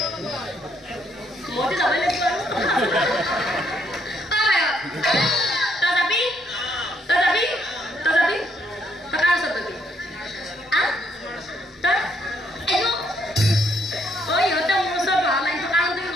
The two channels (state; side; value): normal; both; correlation 0.71